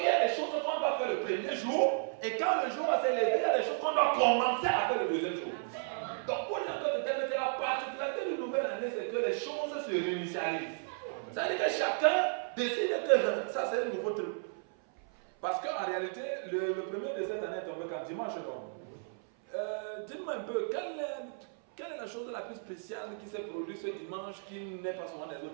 y a des choses qu'on doit faire le premier jour, et quand le jour va s'élever, il y a des choses qu'on doit commencer à faire le deuxième jour. Donc pour dire que la particularité de nouvelle année, c'est que les choses se réinitialisent. Ça veut dire que chacun décide que ça c'est un nouveau truc. Parce qu'en réalité, le premier de cette année est tombé quand dimanche. Dites-moi un peu, quelle est la chose la plus spéciale qui s'est produite ce dimanche qui n'est pas souvent des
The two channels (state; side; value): silent; left; 55 dB below the other